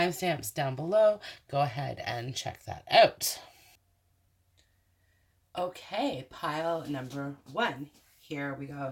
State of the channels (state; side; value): identical; both; correlation 1.00